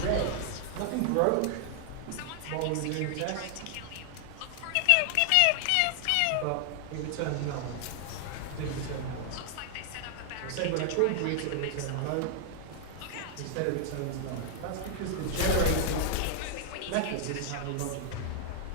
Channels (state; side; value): different; both; correlation 0.00